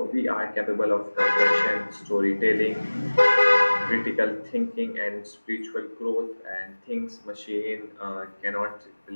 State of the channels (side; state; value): both; inverted; correlation -1.00